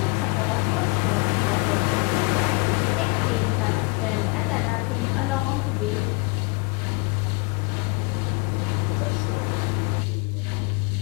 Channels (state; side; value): quieter; right; 28.5 dB